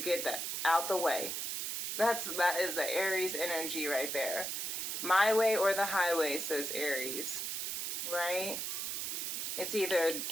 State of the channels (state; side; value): noise; right; hiss, 2 dB below the sound